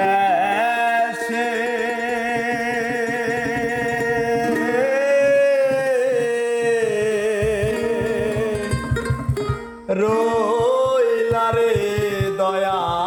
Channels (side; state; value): both; identical; correlation 1.00